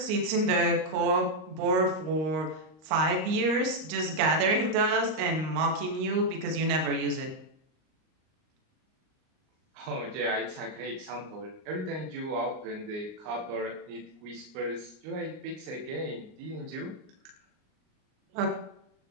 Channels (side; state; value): left; late; 38 ms